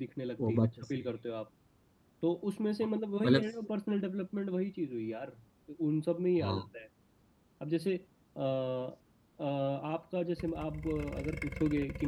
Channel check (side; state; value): both; identical; correlation 1.00